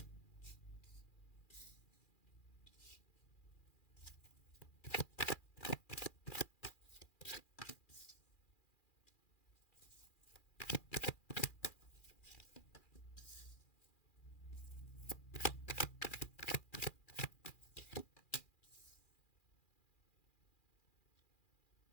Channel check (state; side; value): late; right; 2.4 ms